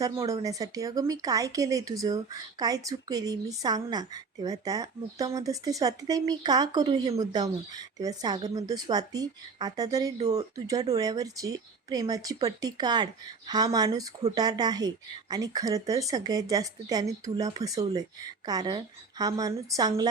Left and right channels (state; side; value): quieter; left; 4.8 dB